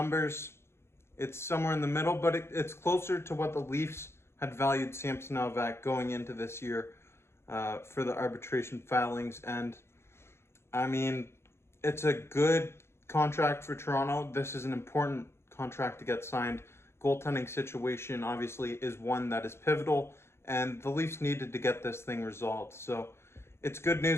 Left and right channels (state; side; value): late; right; 0.12 ms